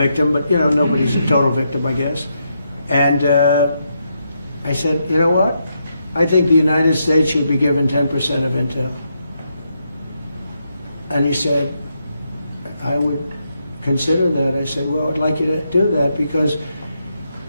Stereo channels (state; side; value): inverted; both; correlation -0.81